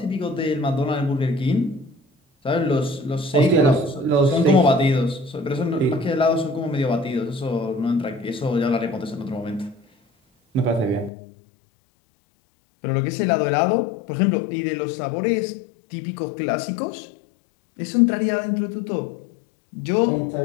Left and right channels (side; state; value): right; drops out; at 11.1 s